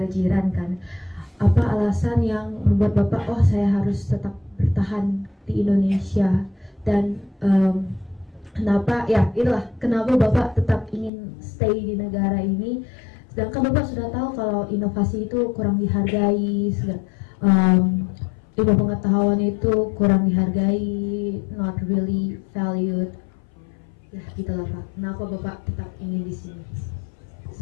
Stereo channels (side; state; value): right; drops out; at 11.1 s